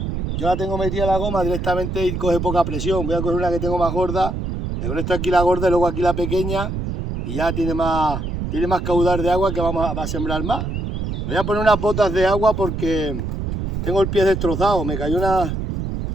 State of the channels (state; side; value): noise; right; rumble, 3 dB below the sound